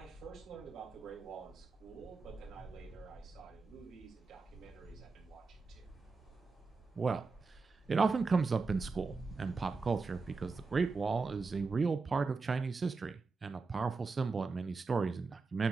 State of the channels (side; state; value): left; quieter; 4.3 dB